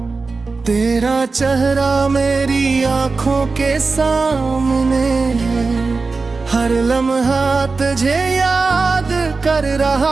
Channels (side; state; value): left; quieter; 4.1 dB